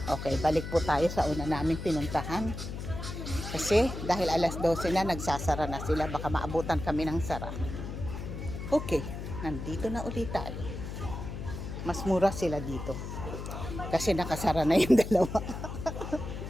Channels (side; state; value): left; noise; hum, 7 dB below the sound